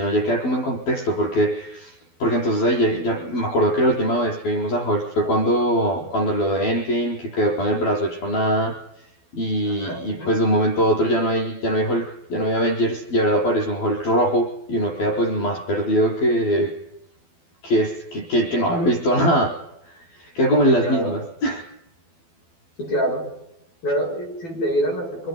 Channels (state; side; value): late; right; 12 ms